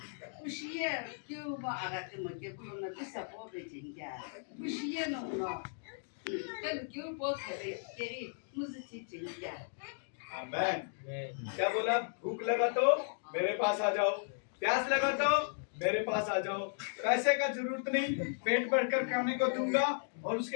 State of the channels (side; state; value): right; silent; digital silence